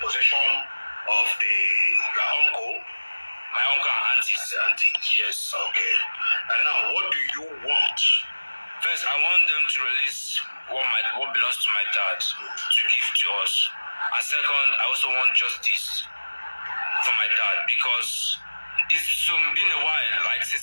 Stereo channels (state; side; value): inverted; both; correlation -1.00